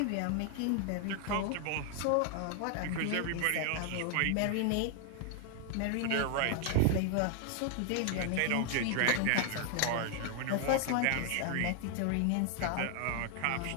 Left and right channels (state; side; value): different; both; correlation 0.00